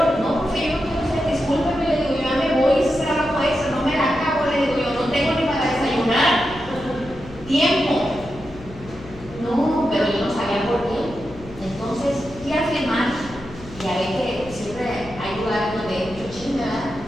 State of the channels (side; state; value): left; noise; hum, 17 dB below the sound